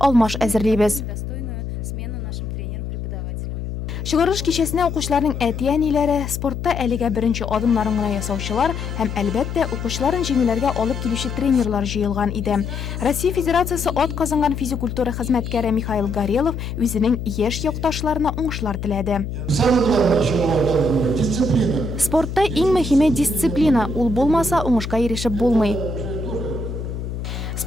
әзерлибез. Достойную смену нашим тренерам-преподавателям. Чыгарыш кичәсенә укучыларның әти-әниләре, спортта әлегә беренче адымнарын гына ясаучылар һәм әлбәттә укучыларын җиңүләргә алып килүче тренерлар җыелган иде. Россия Федерациясе ат казанган физик культура хезмәткәре Михаил Горелов үзенең яшь якташларына уңышлар теләде. Спортта иң мөһиме дисциплина, ул булмаса уңышка ирешеп булмый.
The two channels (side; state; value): left; noise; hum, 6 dB below the sound